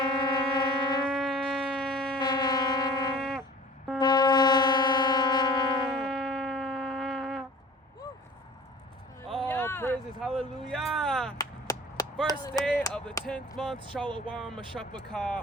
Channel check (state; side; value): normal; both; correlation 0.44